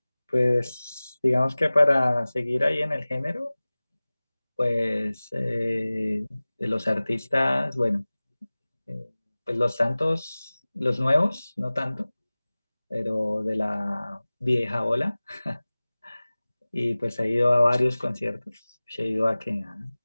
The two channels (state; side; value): inverted; both; correlation -0.99